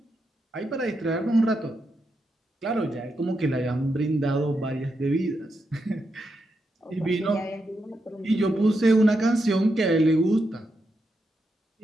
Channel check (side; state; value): both; normal; correlation 0.84